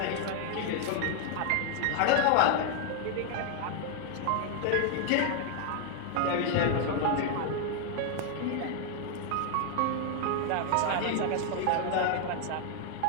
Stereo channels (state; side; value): different; both; correlation 0.00